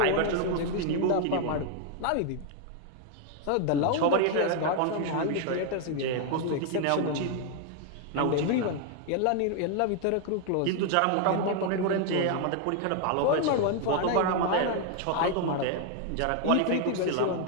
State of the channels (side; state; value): both; different; correlation 0.00